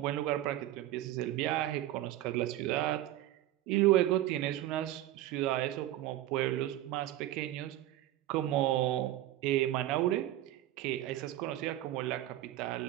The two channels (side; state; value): left; quieter; 14.3 dB